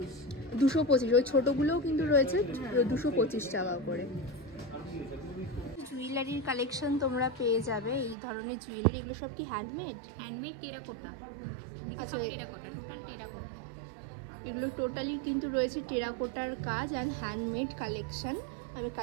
225। ওই ছোটগুলোও কিন্তু রয়েছে 225 টাকা করে। জুয়েলারির কালেকশন তোমরা পেয়ে যাবে, এই ধরনের জুয়েলারি। এগুলো সব কি হ্যান্ডমেড? Handmade terracotta. আচ্ছা, এগুলো টোটালি কিন্তু রয়েছে টেরাকোটার কাজ আর হ্যান্ডমেড কালেকশন। আমি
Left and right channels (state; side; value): drops out; left; at 8.2 s